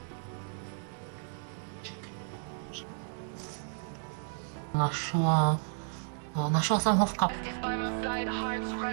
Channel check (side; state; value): left; silent; 56 dB below the other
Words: ráž. Našla jsem ho v kapse.